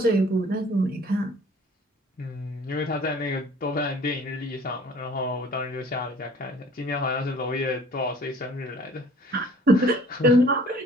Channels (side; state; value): both; normal; correlation 0.52